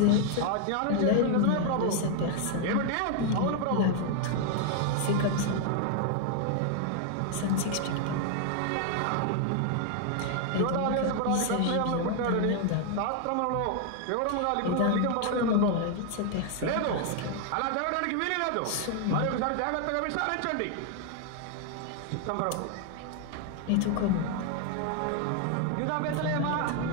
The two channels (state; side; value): different; both; correlation 0.00